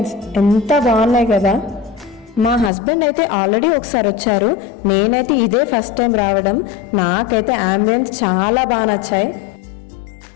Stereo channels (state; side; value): drops out; right; at 2.7 s